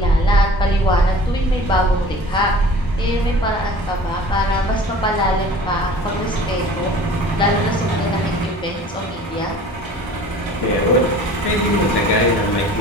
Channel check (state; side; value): normal; both; correlation 0.45